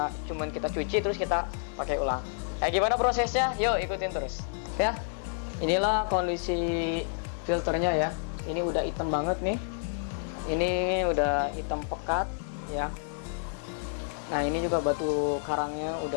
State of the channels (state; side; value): silent; right; digital silence